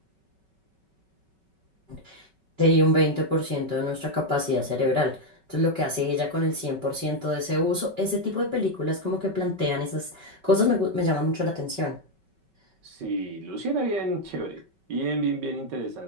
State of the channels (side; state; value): left; late; 5.3 ms